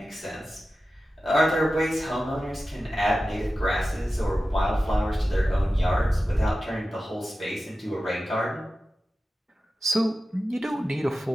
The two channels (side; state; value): both; normal; correlation 0.94